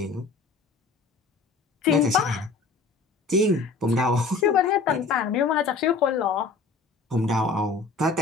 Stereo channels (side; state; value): right; quieter; 4.2 dB